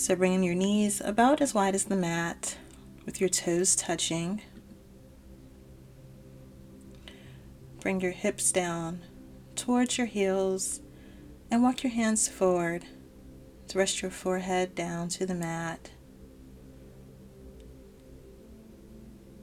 bringing your knees about as wide as the mat, with your toes touching. Bring your hips down towards your heels and walk your hands forward to rest your forehead down to the mat.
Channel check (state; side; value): identical; both; correlation 1.00